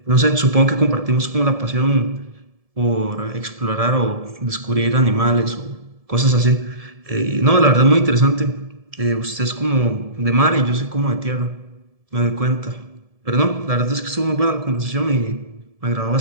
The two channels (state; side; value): late; left; 1.7 ms